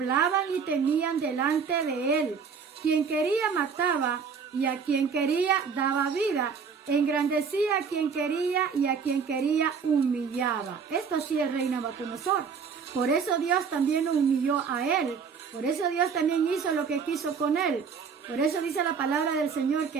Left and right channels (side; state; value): left; quieter; 6.1 dB